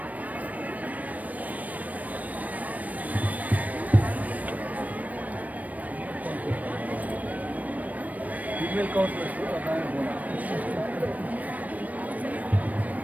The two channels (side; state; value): left; late; 0.073 ms